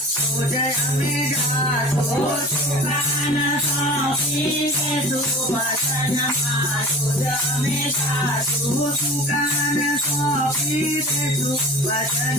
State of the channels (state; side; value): normal; both; correlation 0.38